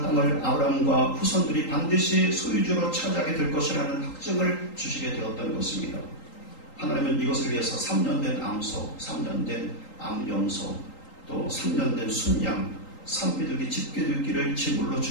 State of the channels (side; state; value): right; late; 3.8 ms